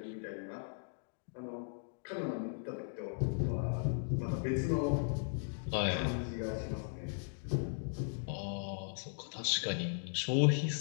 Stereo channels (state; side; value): silent; right; digital silence